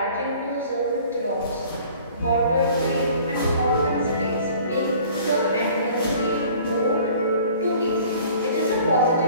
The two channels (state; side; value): inverted; both; correlation -0.50